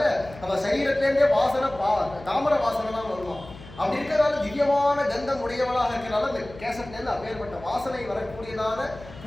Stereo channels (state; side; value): noise; left; hum, 18 dB below the sound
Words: அவ சரீரத்திலேருந்தே வாசனை தாமரை வாசனை தான் வருவான். அப்படி இருக்கிறதால திவ்யமான கந்தம் உடையவளாக இருக்கிறதால இந்த கேசத்திலேருந்து அப்பேற்பட்ட வாசனை வரக்கூடியதான